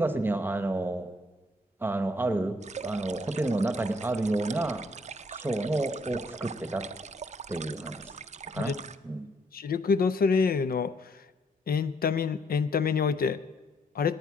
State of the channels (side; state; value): both; normal; correlation 0.68